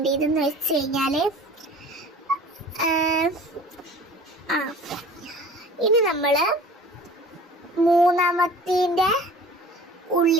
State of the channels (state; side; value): normal; both; correlation 0.44